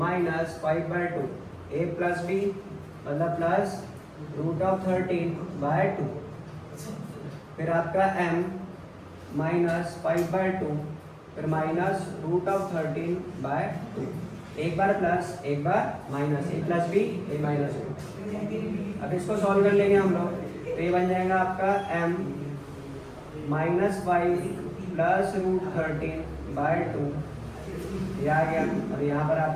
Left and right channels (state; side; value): identical; both; correlation 1.00